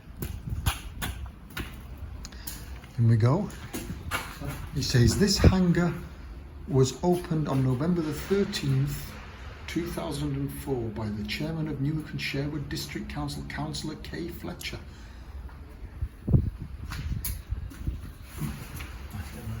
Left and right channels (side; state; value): both; identical; correlation 1.00